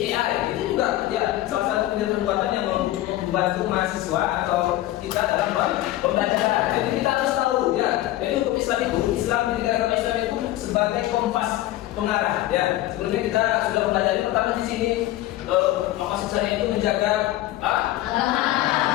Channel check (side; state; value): right; quieter; 15.3 dB